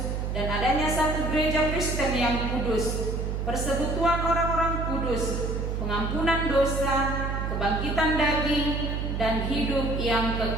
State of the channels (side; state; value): right; noise; hum, 2 dB below the sound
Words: dan adanya satu gereja Kristen yang kudus, persekutuan orang-orang kudus, pengampunan dosa, kebangkitan daging, dan hidup yang